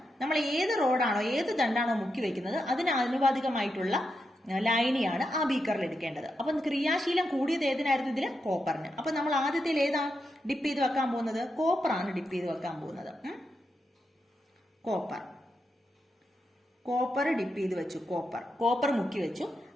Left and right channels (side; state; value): both; normal; correlation 0.86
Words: നമ്മൾ ഏത് റോഡാണോ ഏത് ദണ്ടാണോ മുക്കി വെക്കുന്നത് അതിന് ആനുപാതികമായിട്ടുള്ള ലൈനിയാണ് ആ ബീക്കറിൽ എടുക്കേണ്ടത്. അപ്പൊ ക്രിയാശീലം കൂടിയത് ഏതിനായിരുന്നു? ഇതില് കോപ്പറിന്. അപ്പൊ നമ്മൾ ആദ്യത്തിൽ ഏതാ ഡിപ്പ് ചെയ്ത് വെക്കാൻ പോകുന്നത്? കോപ്പറാണ് ഡിപ്പ് ചെയ്ത് വെക്കാൻ പോകുന്നത്. കോപ്പർ ഡിപ്പ് ചെയ്ത് വെച്ചു, കോപ്പർ മുക്കി വെച്ചു.